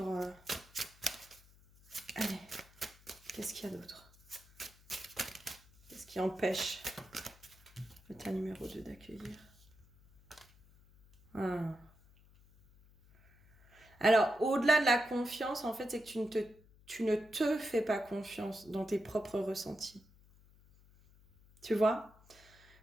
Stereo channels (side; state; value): left; noise; hum, 26 dB below the sound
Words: Allez, qu'est-ce qu'il y a d'autre? Qu'est-ce qui empêche le tas numéro 2 d'accueillir? Alors, au-delà de la confiance, en fait, c'est que tu ne te fais pas confiance dans tes propres ressentis. Tu vois?